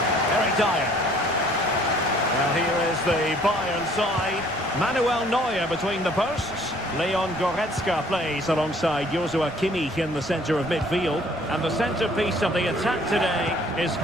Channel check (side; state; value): right; noise; rumble, 23 dB below the sound